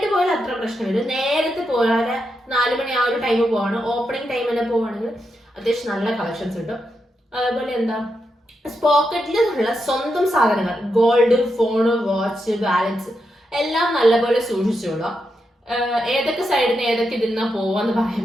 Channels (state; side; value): normal; both; correlation 0.85